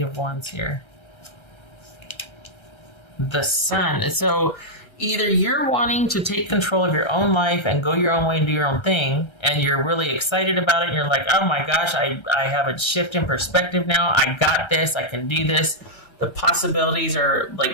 of Wands here? The Sun. So either you're wanting to take control of your own life and go your own way and do your own thing, and you're really excited about it, and you're like, oh my gosh, I have a shift in perspective now. I got this. I can do this. The possibilities are,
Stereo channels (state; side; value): late; right; 1.3 ms